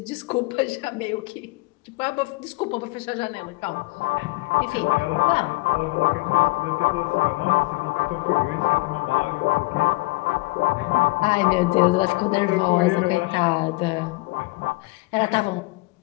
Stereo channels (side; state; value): right; quieter; 24.2 dB